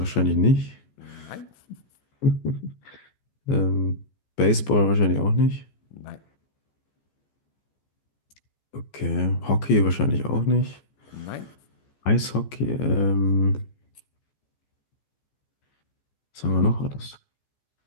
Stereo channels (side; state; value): right; late; 14 ms